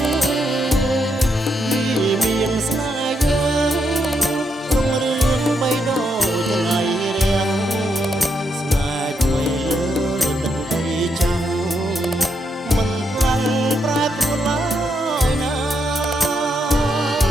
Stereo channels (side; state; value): both; normal; correlation 0.79